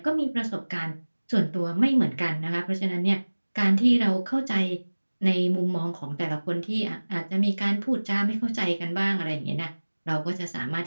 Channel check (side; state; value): both; inverted; correlation -1.00